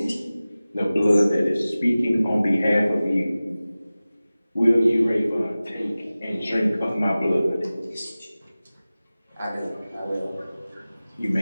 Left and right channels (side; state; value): both; inverted; correlation -0.97